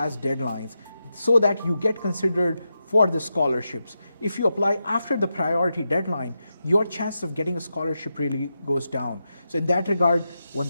deadlines so that you get considered for the scholarships. If you apply after the priority deadline, your chance of getting a scholarship really goes down. So in that regard, one of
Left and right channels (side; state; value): both; inverted; correlation -0.88